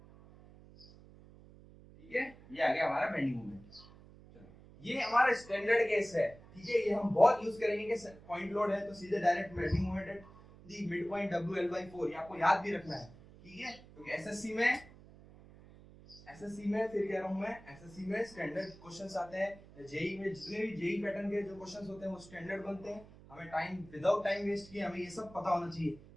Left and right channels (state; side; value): noise; right; hum, 21 dB below the sound